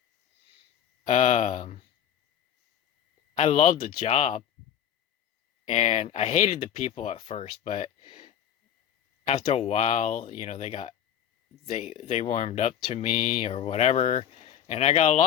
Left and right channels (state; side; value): quieter; right; 9.8 dB